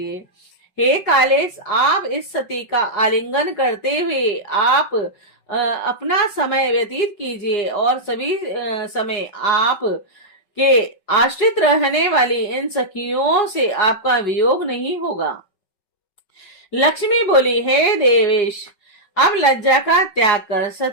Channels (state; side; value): late; right; 5.4 ms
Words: हे कालेश, आप इस सती का आलिंगन करते हुए आप अपना समय व्यतीत कीजिए और सभी समय आप के आश्रित रहने वाली इन सखियों से आपका वियोग नहीं होगा। लक्ष्मी बोली, हे देवेश, अब लज्जा का त्याग कर